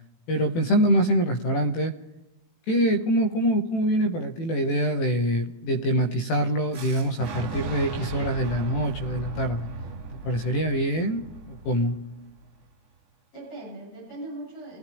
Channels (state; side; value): late; right; 18 ms